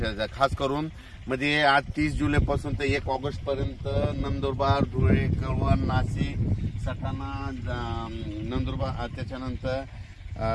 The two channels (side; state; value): both; identical; correlation 1.00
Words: घ्या। खास करून म्हणजे आज 30 जुलैपासून ते 1 ऑगस्ट पर्यंत नंदुरबार, धुळे, कळवण, नाशिक, सटाणा, नंदुरबार, त्याच्यानंतर